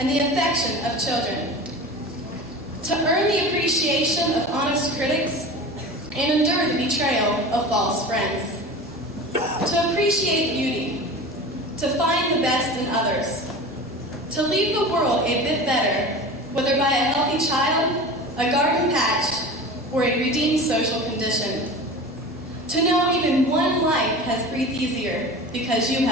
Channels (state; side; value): normal; both; correlation 0.34